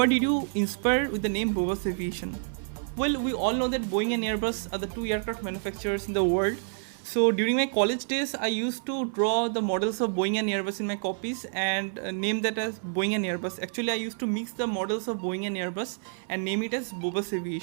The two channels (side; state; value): left; silent; 59 dB below the other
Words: did you inspire with the name Bobas Aviation? Well, we all know that Boeing and Airbus are the 2 aircraft manufacturers in the world. So during my college days, I used to draw the models of Boeing and Airbus in my copies and name that as Boeing and Airbus. Actually, I used to mix the models of Boeing and Airbus and name it as Bobas